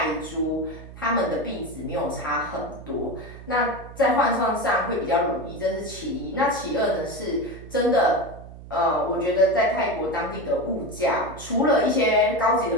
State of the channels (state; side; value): noise; right; hum, 15 dB below the sound